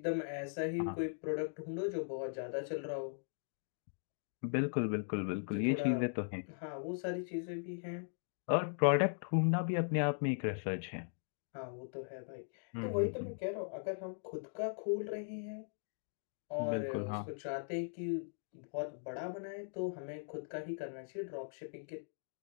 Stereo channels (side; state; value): right; silent; digital silence